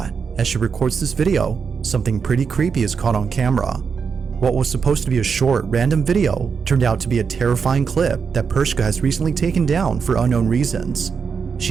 as she records this video, something pretty creepy is caught on camera. What was supposed to be a short, random video turned out to be a terrifying clip that Pershka has recently taken down for unknown reasons.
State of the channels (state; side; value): quieter; left; 6.0 dB